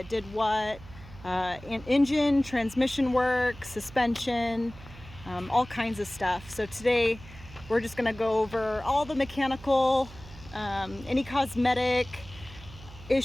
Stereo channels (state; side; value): noise; right; hum, 18 dB below the sound